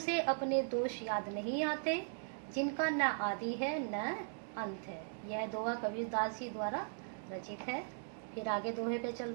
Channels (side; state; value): left; silent; digital silence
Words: अपने दोष याद नहीं आते, जिनका न आदि है न अंत है। यह दोहा कबीरदास जी द्वारा रचित है। फिर आगे दोहे पे